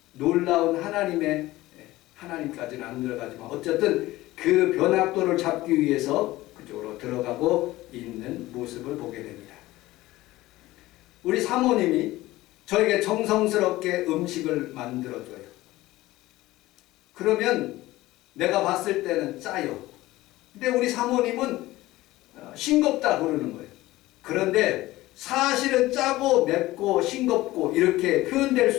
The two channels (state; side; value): quieter; right; 17.6 dB